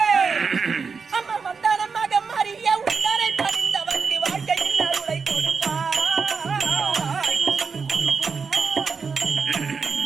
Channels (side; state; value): left; quieter; 5.4 dB